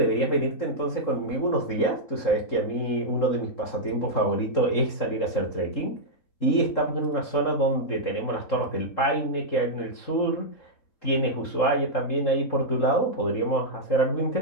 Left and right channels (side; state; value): right; late; 3.7 ms